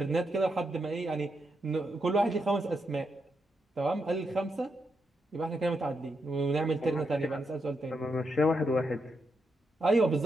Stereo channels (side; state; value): both; normal; correlation 0.82